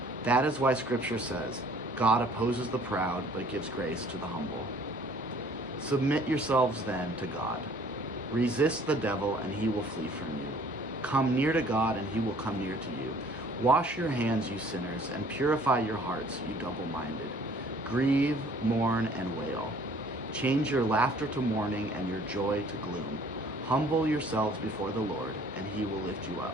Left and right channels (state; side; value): normal; both; correlation 0.55